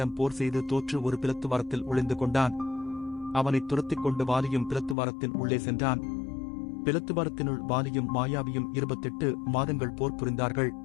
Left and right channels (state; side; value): drops out; right; at 5.0 s